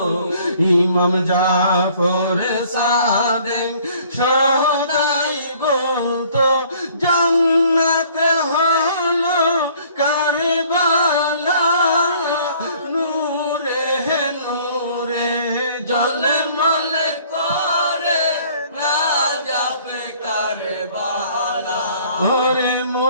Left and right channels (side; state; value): both; inverted; correlation -0.56